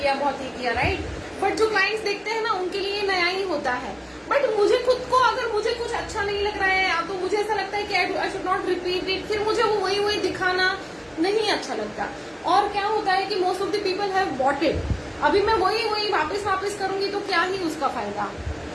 राइट, बट जो क्लाइंट्स देखते हैं ना उनके लिए नया ही होता है। बट मुझे खुद को अगर मुझे कुछ अच्छा नहीं लग रहा है तो मुझे ऐसा लगता है कि I should not repeat it, फिर मुझे वो वही दिखाना नहीं अच्छा लगता। और क्या होता है कि most of the people have bought it, अभी मैं वही वापस करूंगी तो क्या ही उसका फायदा।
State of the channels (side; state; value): both; identical; correlation 1.00